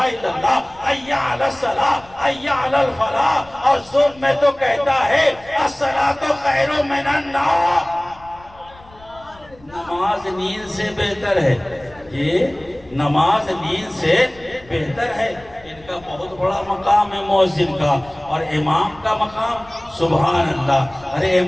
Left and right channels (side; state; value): left; noise; rumble, 24 dB below the sound